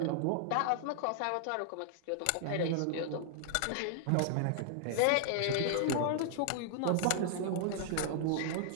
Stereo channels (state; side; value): different; both; correlation -0.01